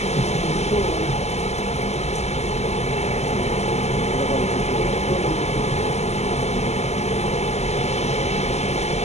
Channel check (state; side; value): late; right; 0.32 ms